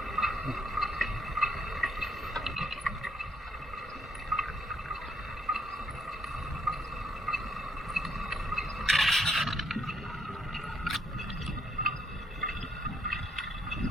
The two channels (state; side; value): normal; both; correlation 0.73